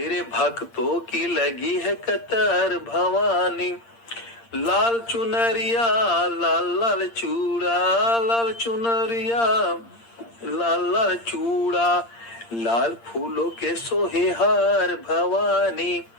भक्तों की लगी है कतार भवानी। लाल चुनरिया लाल लाल चूड़ा, लाल चुनरिया लाल लाल चूड़ा। लाल फूलों के सोहे हार भवानी,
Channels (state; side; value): late; right; 8.7 ms